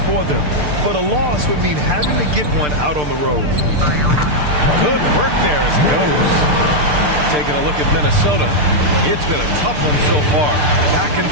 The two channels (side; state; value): left; late; 6.7 ms